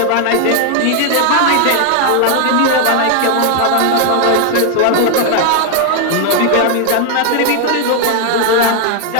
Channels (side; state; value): both; different; correlation 0.00